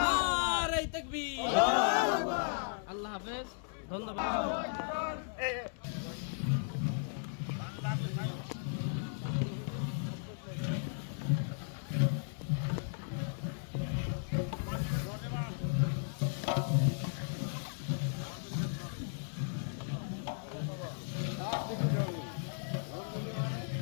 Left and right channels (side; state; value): right; silent; 54 dB below the other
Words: নারে তাকবীর আল্লাহ হাফেজ। ধন্যবাদ।